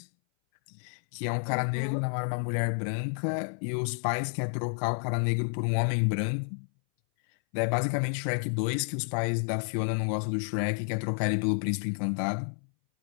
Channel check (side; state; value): right; silent; 58 dB below the other